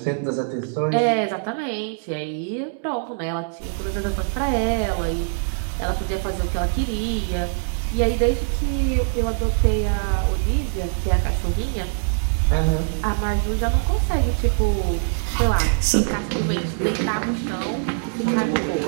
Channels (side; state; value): left; silent; digital silence